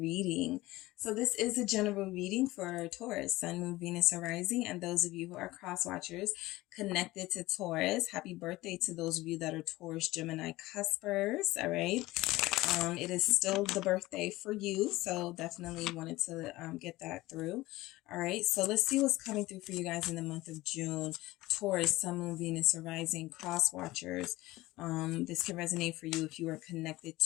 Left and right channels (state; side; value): quieter; right; 18.7 dB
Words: So this is a general reading for Taurus, Sun, Moon, Venus, and Rising, and those of you who are cross watchers connected to Taurus, happy birthday to those of you that are Taurus, Gemini cuspers, all right? It is still the birthday for you, so definitely wanted to get that through. All right, so let's see what's coming through for you guys in the month of June. Taurus, Sun, Moon, Venus, or Rising, cross watchers. This can resonate for you if you are connected